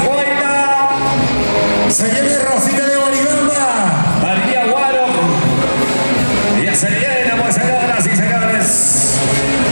Se viene Rosita de Boribamba. María Guaro. Ya se viene, pues, señoras y señores.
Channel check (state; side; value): inverted; both; correlation -1.00